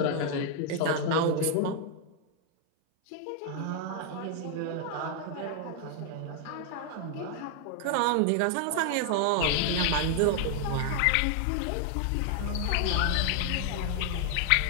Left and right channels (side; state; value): both; different; correlation 0.00